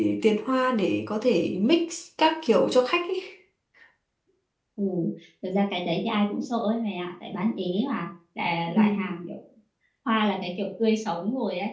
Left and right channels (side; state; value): both; identical; correlation 1.00